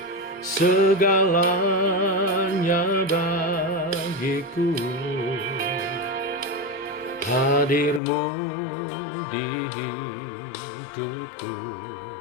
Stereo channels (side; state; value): right; drops out; at 8.0 s